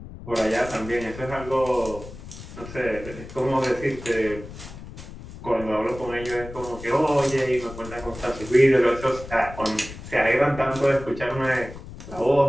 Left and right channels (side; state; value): left; noise; rumble, 13 dB below the sound